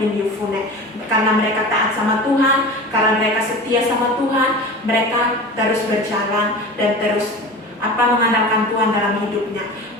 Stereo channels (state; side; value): normal; both; correlation 0.34